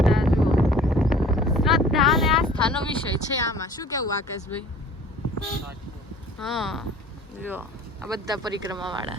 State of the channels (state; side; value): normal; both; correlation 0.48